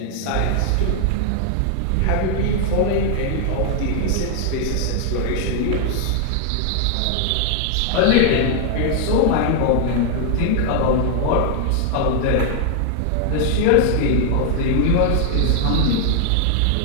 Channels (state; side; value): different; both; correlation 0.00